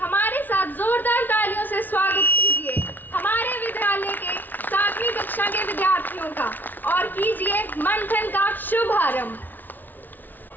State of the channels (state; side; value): late; right; 0.087 ms